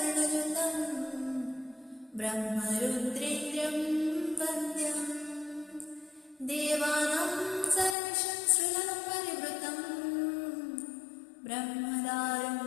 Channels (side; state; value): right; drops out; at 8.0 s